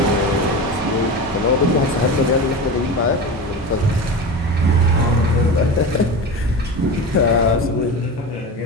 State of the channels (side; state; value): both; normal; correlation 0.27